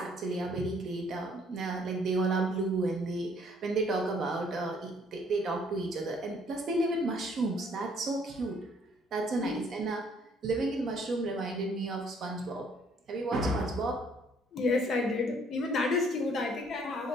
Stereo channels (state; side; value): normal; both; correlation 0.63